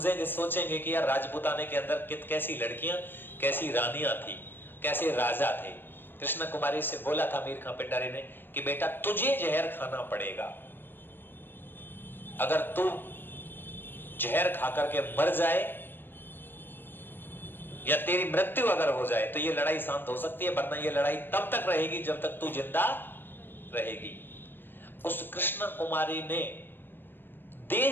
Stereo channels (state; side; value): late; right; 0.096 ms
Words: सोचेंगे कि यार राजपूताने के अंदर कैसी लड़कियां, कैसी रानियां थी, कैसे राजा थे। कृष्ण कुमारी से बोला था अमीर खान पिंडारी ने कि बेटा तुझे जहर खाना पड़ेगा, अगर तू जहर खाकर के मर जाए या तेरी मृत्यु अगर हो जाए तो ये लड़ाई शांत हो सकती है, वरना ये लड़ाई तब तक रहेगी जब तक तू जिंदा रहेगी। उस कृष्ण कुमारी ने